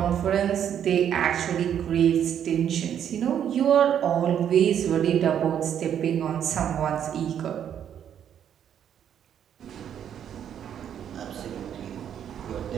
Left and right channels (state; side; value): quieter; left; 9.3 dB